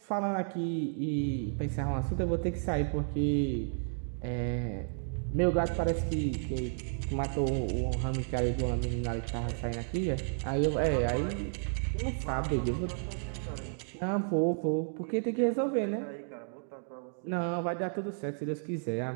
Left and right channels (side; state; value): left; silent; digital silence